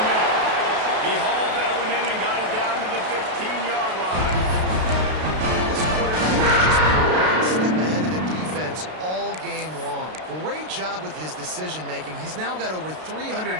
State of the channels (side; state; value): left; late; 32 ms